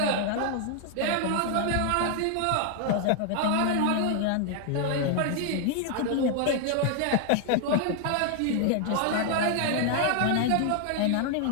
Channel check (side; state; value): both; different; correlation 0.00